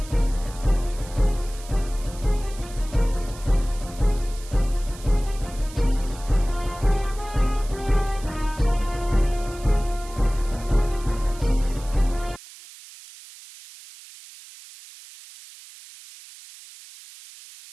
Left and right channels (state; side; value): noise; right; hiss, 18 dB below the sound